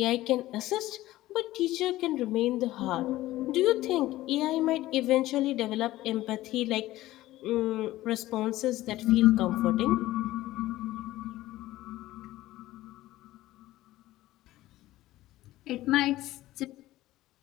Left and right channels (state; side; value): quieter; right; 16.2 dB